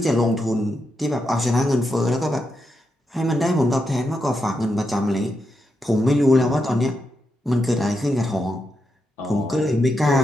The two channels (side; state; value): both; normal; correlation 0.84